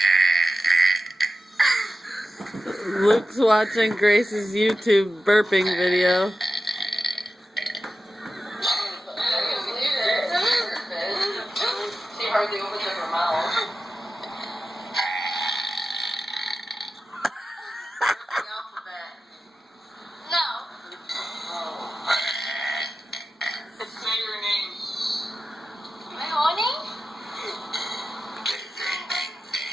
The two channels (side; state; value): both; normal; correlation 0.93